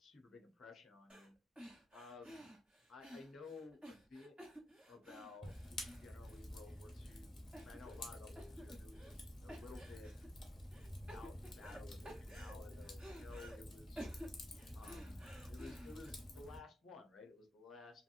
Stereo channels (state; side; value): normal; both; correlation 0.86